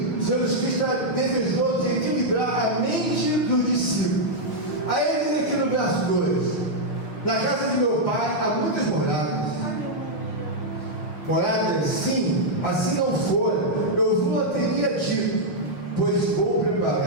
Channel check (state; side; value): late; right; 6.3 ms